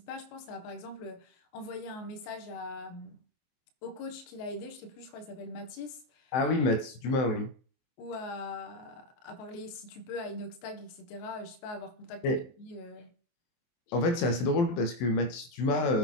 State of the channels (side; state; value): right; late; 23 ms